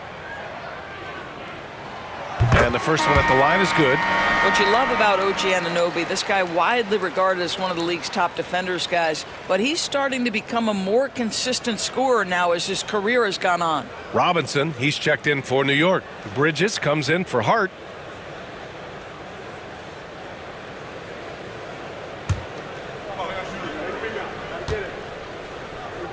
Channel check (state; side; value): identical; both; correlation 1.00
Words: And the first one at the line is good. What you love about OG Anunoby, this guy widely regarded as one of the league's top defenders, guys, but he's starting to become a more consistent scorer now as his career has gone on. Robinson, he's checked in for New York. Bridges comes in for Hart.